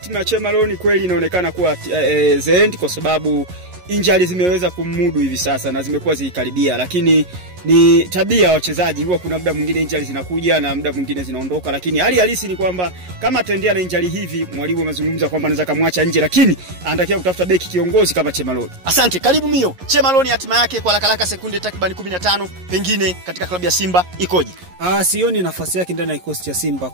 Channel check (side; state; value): left; late; 11 ms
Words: ya Che Malone kweli inaonekana kuwa the end, kwa sababu injury zimeweza kumudu hivi sasa na zimekuwa zikikaribia, lakini ni tabia ya wachezaji, huwa kuna muda mwingine injury zinakuja na muda mwingine zinaondoka, lakini hali halisi ni kwamba kama ataendelea na injury hivi, mwalimu amezungumza kwamba anaweza kumwacha nje, lakini anatakiwa kutafuta beki kiongozi kama Che Malone. Asante, karibu Mio. Che Malone hatima yake kwa haraka sekunde takriban 15 pengine katika klabu ya Simba ikoje? Sioni nafasi yake ndani ya kikosi cha Simba.